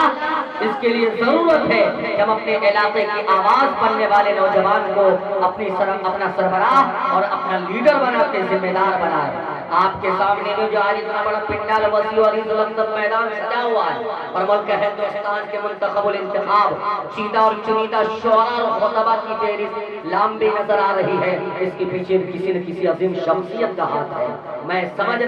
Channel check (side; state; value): both; identical; correlation 1.00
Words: اس کے لیے ضرورت ہے کہ ہم اپنے علاقے کی آواز بننے والے نوجوان کو اپنا سربراہ اور اپنا لیڈر بنا کے ذمہ دار بنائے۔ آپ کے سامنے میں جو آج اتنا بڑا پنڈال وسیع اور مقدس میدان سجا ہوا ہے اور ملک ہندوستان کے منتخب الانتخاب چیدہ اور چنیدہ شعراء اور خطبہ کی فہرست لمبی نظر آ رہی ہے، اس کے پیچھے کسی نہ کسی عظیم شخصیت کا ہاتھ ہے۔ میں سمجھ